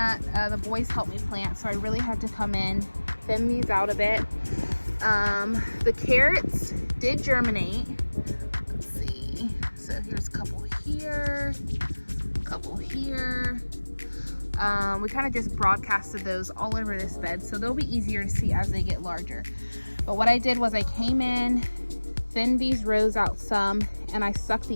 the boys helped me plant, so I really had to come in, thin these out a bit. The carrots did germinate. Let's see. So here's a couple here, a couple here. We kind of just broadcasted those all over this bed, so they'll be easier to see as they get larger. But what I did was I came in, thinned these rows out some, and I stuck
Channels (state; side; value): inverted; both; correlation -1.00